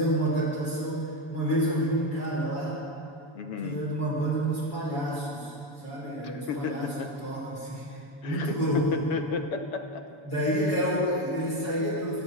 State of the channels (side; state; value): right; late; 7.0 ms